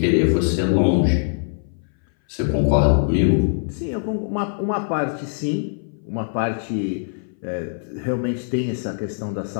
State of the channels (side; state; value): right; silent; 60 dB below the other